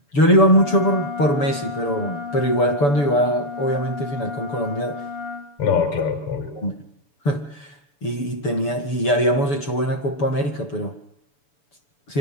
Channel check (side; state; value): right; late; 7.0 ms